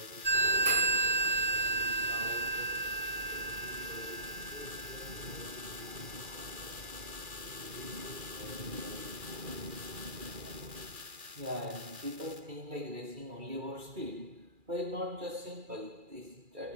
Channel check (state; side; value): late; left; 2.4 ms